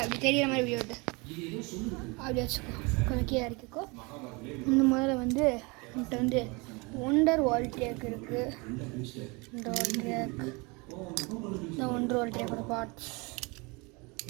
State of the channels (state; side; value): quieter; left; 27.8 dB